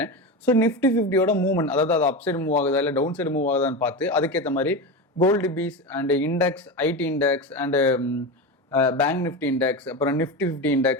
ஸோ நிஃப்டி 50யோட மூவ்மெண்ட், அதாவது அது அப் சைடு மூவ் ஆகுதா இல்லை டவுன் சைடு மூவ் ஆகுதான்னு பார்த்து அதுக்கேற்ற மாதிரி gold bees and index, IT index and bank Nifty index, அப்புறம் Nifty 50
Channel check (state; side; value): normal; both; correlation 0.21